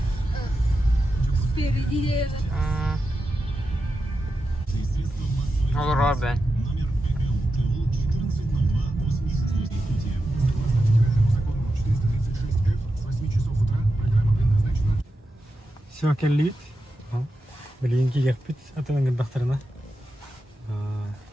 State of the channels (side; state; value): both; normal; correlation 0.89